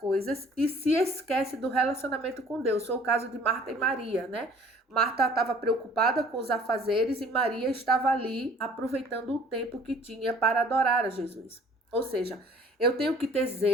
e se esquece do relacionamento com Deus. Foi o caso de Marta e Maria, né? Marta estava preocupada com os afazeres e Maria estava ali aproveitando o tempo que tinha para adorar a Jesus. Ou seja, eu tenho que ter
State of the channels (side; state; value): both; normal; correlation 0.52